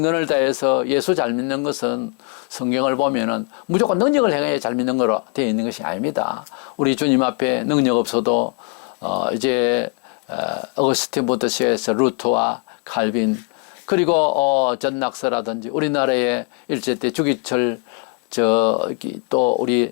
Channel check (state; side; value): quieter; right; 36.1 dB